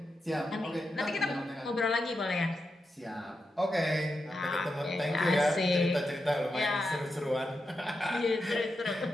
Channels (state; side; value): normal; both; correlation 0.87